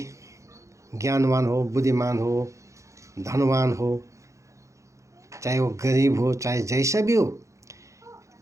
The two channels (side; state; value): left; late; 0.15 ms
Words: ज्ञानवान हो, बुद्धिमान हो, धनवान हो, चाहे वो गरीब हो, चाहे जैसा भी हो,